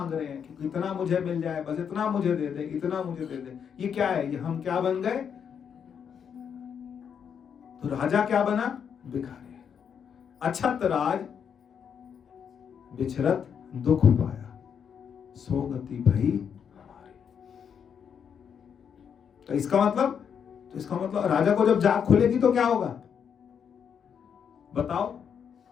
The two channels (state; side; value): quieter; right; 7.5 dB